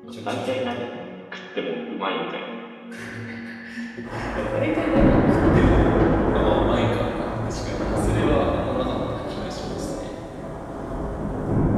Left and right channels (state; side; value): identical; both; correlation 1.00